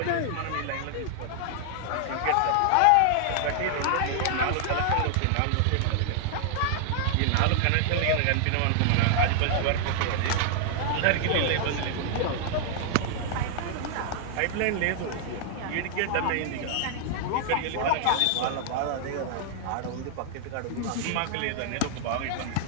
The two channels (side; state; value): both; different; correlation 0.00